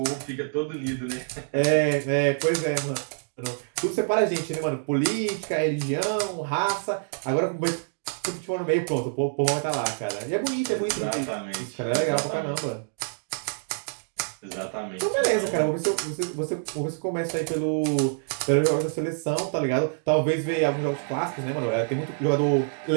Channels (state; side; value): silent; left; digital silence